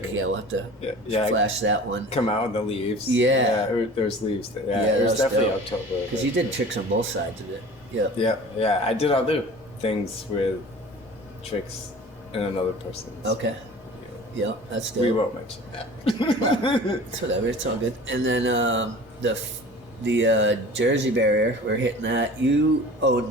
Yeah, we'll have to flash that one. Come out in the leaves. Yeah. There's leaves. Yeah, it was definitely dope. October. Because you did tricks on both sides of it. Yeah. I did other things with tricks in another person's. Okay. Yeah, that's dope. We won't mention that. It's whatever. It's all good. And then the Jersey barrier, we're hitting that. You own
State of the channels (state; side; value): normal; both; correlation 0.42